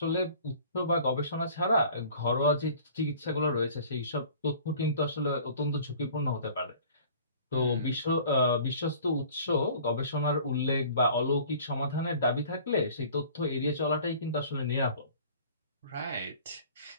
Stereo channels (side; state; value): both; inverted; correlation -0.48